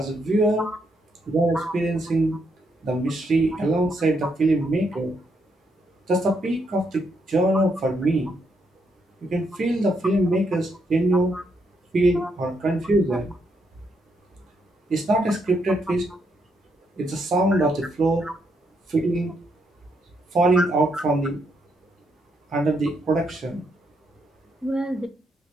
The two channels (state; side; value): normal; both; correlation 0.77